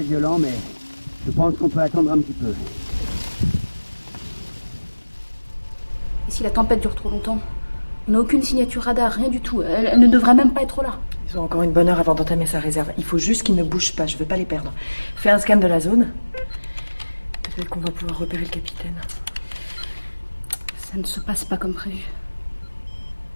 mais je pense qu'on peut attendre un petit peu. Et si la tempête dure trop longtemps? On n'a aucune signature radar, rien du tout. Elle ne devrait même pas être là. Ils ont encore une bonne heure avant d'entamer sa réserve. Il faut juste qu'ils ne bougent pas, je veux pas les perdre. Fais un scan de la zone. Peut-être qu'on va pouvoir repérer le capitaine. Ça ne se passe pas comme prévu.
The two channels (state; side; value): inverted; both; correlation -1.00